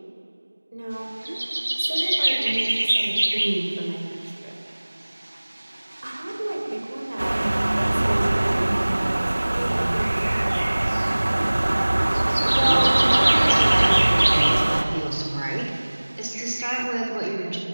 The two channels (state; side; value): inverted; both; correlation -1.00